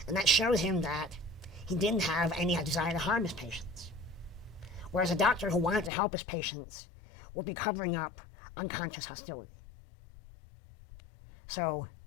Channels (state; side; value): drops out; right; at 5.9 s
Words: and that showed him that he didn't have any desire to harm his patients. Whereas a doctor who wanted to help his patients would be covering up unconscious hostility. So